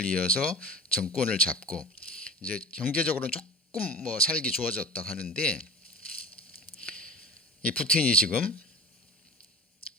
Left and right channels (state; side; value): normal; both; correlation 0.35